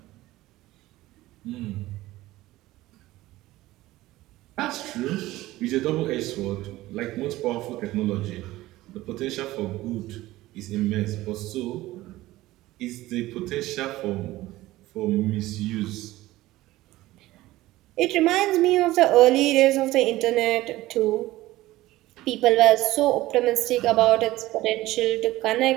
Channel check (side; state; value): left; quieter; 17.2 dB